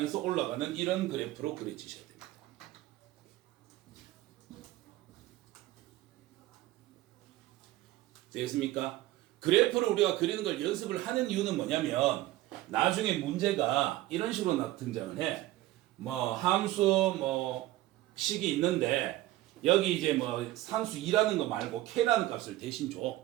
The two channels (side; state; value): left; quieter; 16.1 dB